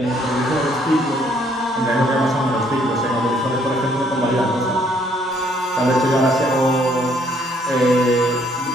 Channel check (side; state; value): both; normal; correlation 0.66